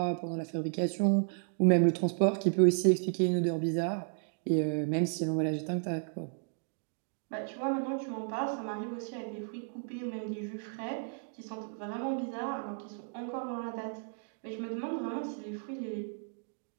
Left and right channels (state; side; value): silent; left; 56 dB below the other